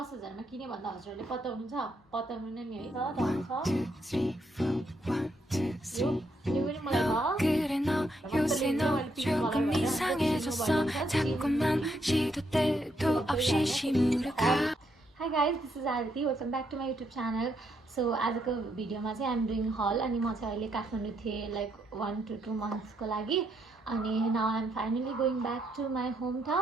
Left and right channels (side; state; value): both; normal; correlation 0.76